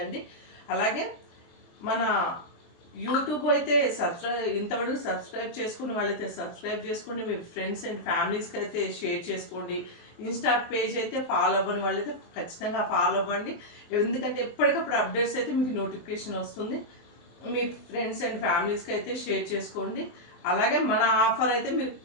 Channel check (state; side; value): late; right; 23 ms